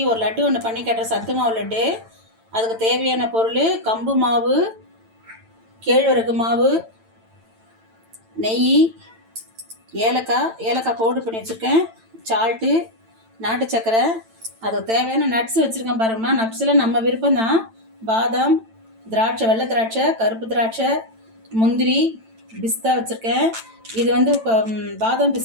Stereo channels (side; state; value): left; late; 9.0 ms